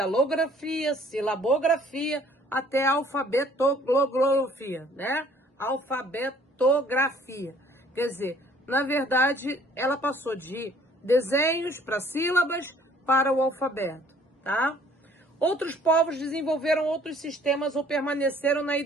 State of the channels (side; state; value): both; normal; correlation 0.57